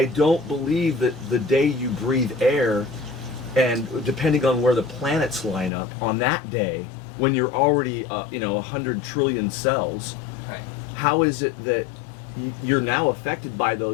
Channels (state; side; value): drops out; right; at 5.7 s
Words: don't believe that the day you breathe air, and depending on where the planets line up on that day, when you're already 100 trillion cells, how is it that you're now affected by